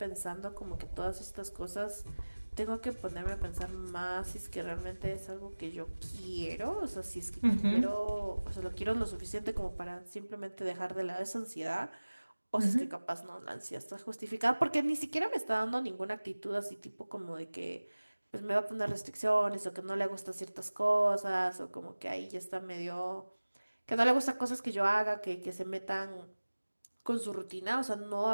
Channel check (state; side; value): inverted; both; correlation -1.00